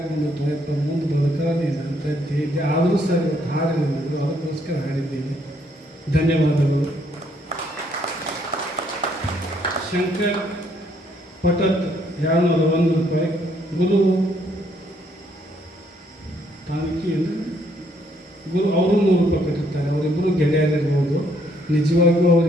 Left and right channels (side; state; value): both; normal; correlation 0.69